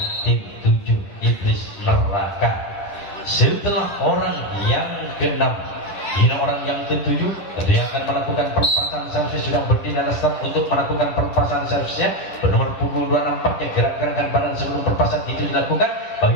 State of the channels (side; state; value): right; late; 10 ms